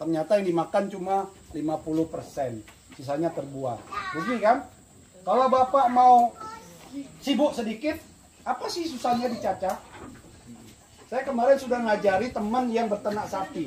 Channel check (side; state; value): both; identical; correlation 1.00